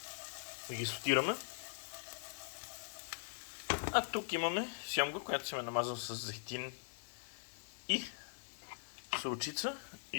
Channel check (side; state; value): right; silent; digital silence